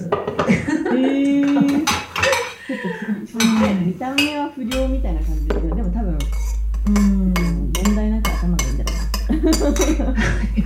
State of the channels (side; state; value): both; identical; correlation 1.00